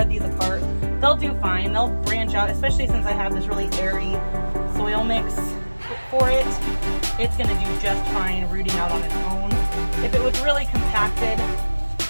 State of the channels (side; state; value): both; inverted; correlation -1.00